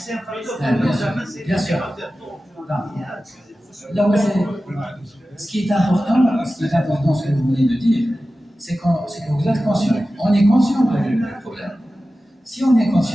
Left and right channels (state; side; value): normal; both; correlation 0.95